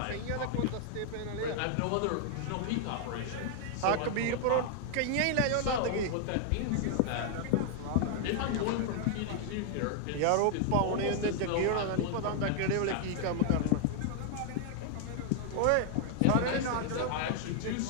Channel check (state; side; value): different; both; correlation 0.00